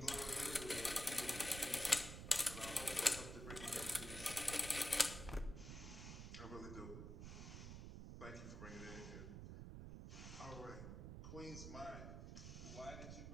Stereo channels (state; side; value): noise; right; rumble, 8 dB below the sound